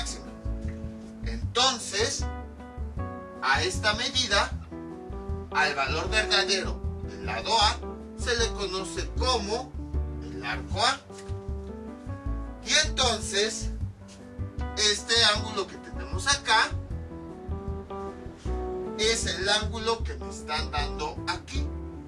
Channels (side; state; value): both; identical; correlation 1.00